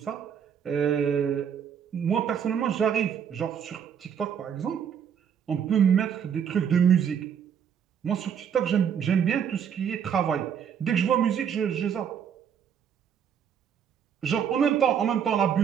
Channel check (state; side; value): quieter; left; 8.1 dB